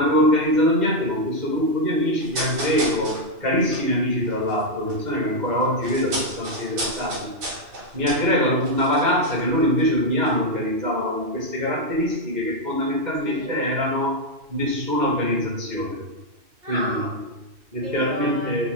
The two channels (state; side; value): late; left; 2.6 ms